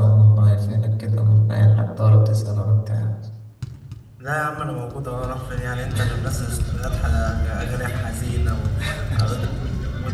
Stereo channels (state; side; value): identical; both; correlation 1.00